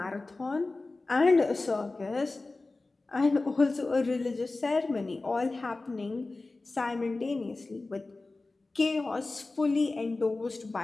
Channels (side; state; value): right; quieter; 3.3 dB